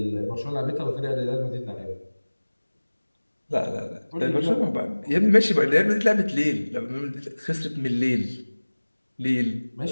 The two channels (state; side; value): inverted; both; correlation -1.00